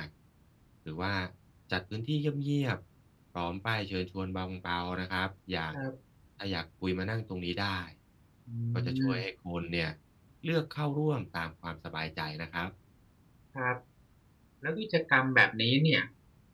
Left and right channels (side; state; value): both; identical; correlation 1.00